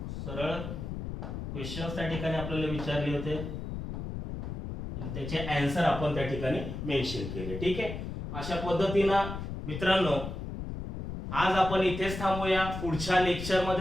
सरळ क्वेश्चन्स त्या ठिकाणी आपल्याला विचारले होते आणि त्याचे आन्सर आपण त्या ठिकाणी मेन्शन केले. ठीक आहे, अशा पद्धतीनं मित्रांनो आज आपण इथेच थांबूया. पुढच्या लेक्चर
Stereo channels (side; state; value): left; noise; rumble, 6 dB below the sound